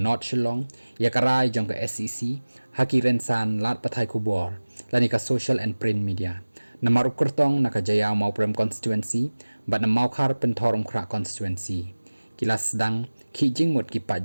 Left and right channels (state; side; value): inverted; both; correlation -1.00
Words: Shillong ya karai jong ka SEC haki rensan lat pathai kubor lani ka social and print media na maruk kertong na ka jaya mau prem constituency but na mau khar pen thorum khra constituency kilas dang ki jingmut ki